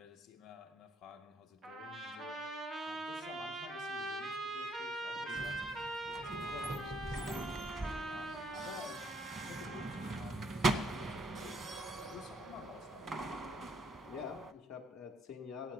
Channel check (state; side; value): normal; both; correlation 0.69